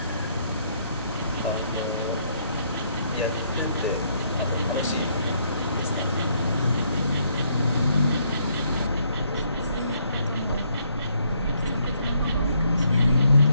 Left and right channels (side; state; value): both; inverted; correlation -0.71